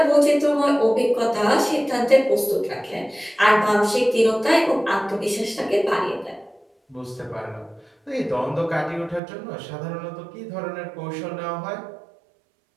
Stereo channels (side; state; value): left; drops out; at 9.2 s